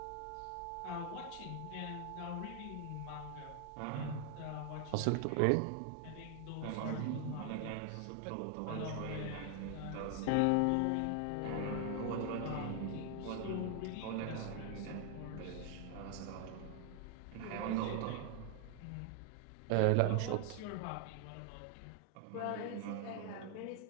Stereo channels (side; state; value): both; different; correlation 0.00